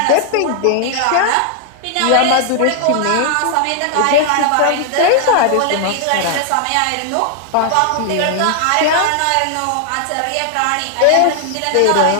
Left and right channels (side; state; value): both; different; correlation 0.00